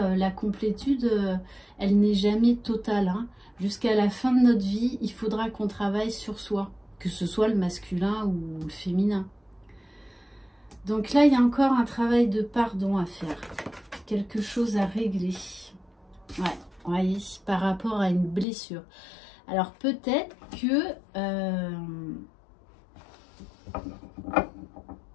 la complétude, elle n'est jamais totale. Hein. Jusqu'à la fin de notre vie, il faudra qu'on travaille sur soi, que ce soit le masculin ou le féminin. Donc là, il y a encore un travail de pardon à faire. Quelque chose à régler. Ouais, voyez, par rapport à une blessure. Alors peut-être que...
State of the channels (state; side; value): drops out; right; at 18.4 s